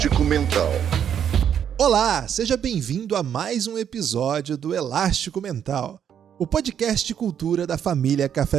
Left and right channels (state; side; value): quieter; left; 8.8 dB